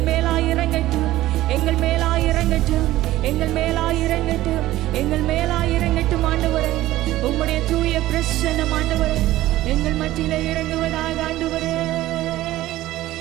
மேலாய் இறங்கட்டும், எங்கள் மேலாய் இறங்கட்டும், எங்கள் மேலாய் இறங்கட்டும், எங்கள் மேலாய் இறங்கட்டும் ஆண்டவரே. உம்முடைய தூய பிரசன்னம் ஆண்டவரே எங்கள் மத்தியிலே இறங்குவதாக ஆண்டவரே,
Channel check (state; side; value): quieter; left; 15.7 dB